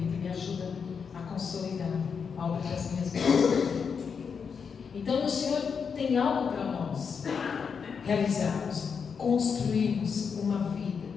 e me ajuda a consolidar a obra das minhas vidas. Então o Senhor tem algo para nós realizarmos, construirmos uma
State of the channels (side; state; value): right; quieter; 6.2 dB